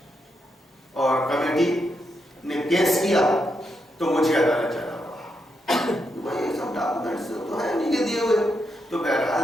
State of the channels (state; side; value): normal; both; correlation 0.82